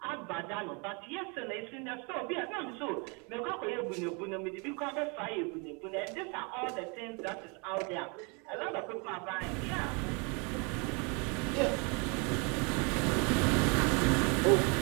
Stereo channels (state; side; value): quieter; left; 32.6 dB